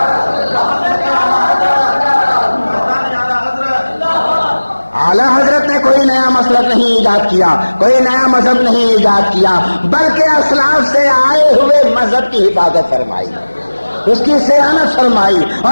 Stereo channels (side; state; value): both; inverted; correlation -1.00